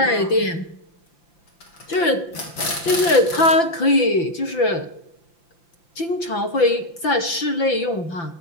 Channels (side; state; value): right; late; 5.9 ms